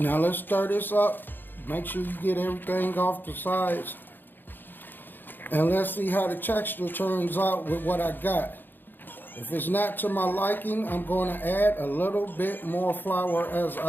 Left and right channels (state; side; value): late; right; 0.093 ms